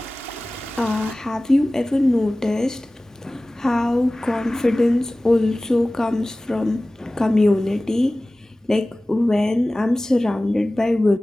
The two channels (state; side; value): normal; both; correlation 0.98